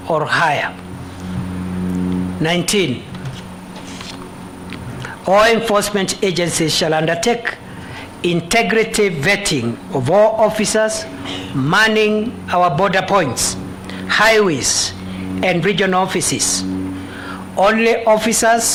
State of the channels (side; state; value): both; identical; correlation 1.00